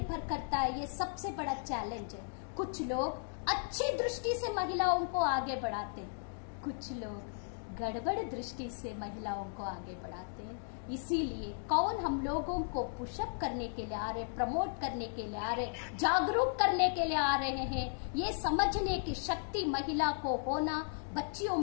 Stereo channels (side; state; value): right; silent; digital silence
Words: करता है। ये सबसे बड़ा चैलेंज है। कुछ लोग अच्छी दृष्टि से महिलाओं को आगे बढ़ाते, कुछ लोग गड़बड़ दृष्टि से महिलाओं को आगे बढ़ाते हैं। इसीलिए कौन हम लोगों को पुशअप करने के लिए आ रहे, प्रमोट करने के लिए आ रहे, जागरूक करने के लिए आ रहे हैं, ये समझने की शक्ति महिला को होना, बच्चियों